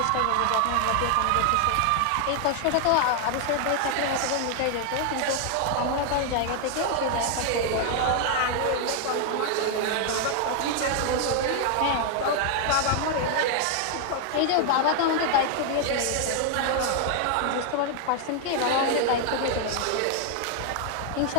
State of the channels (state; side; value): different; both; correlation 0.00